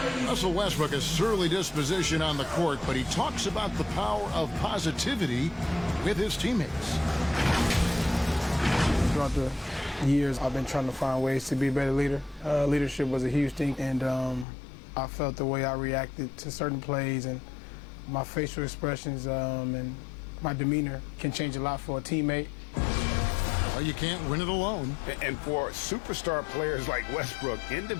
Russell Westbrook has surly disposition on the court, but he talks about the power of positivity with his teammates. Throughout the years, I've been trying to find ways to be a better leader. Leadership was a huge thing, and I felt the way I reacted to certain plays and my facial expressions and my demeanor can change a lot for a teammate. Well, you can't win it alone. And for superstar players like Westbrook,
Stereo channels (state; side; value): drops out; right; at 14.5 s